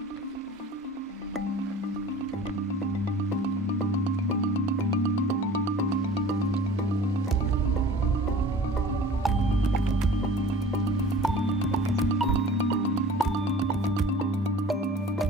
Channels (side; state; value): both; normal; correlation 0.44